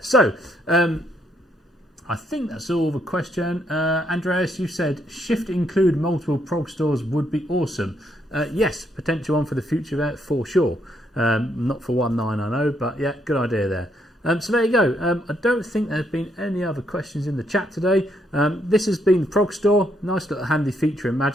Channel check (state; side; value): normal; both; correlation 0.74